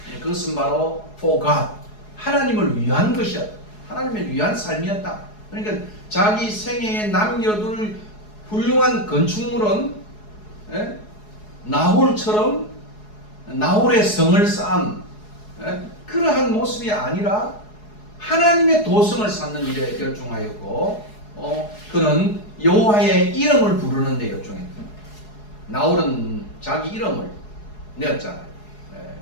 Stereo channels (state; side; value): late; right; 4.8 ms